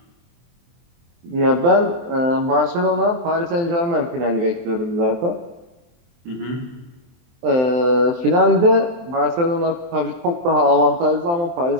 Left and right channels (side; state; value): left; late; 23 ms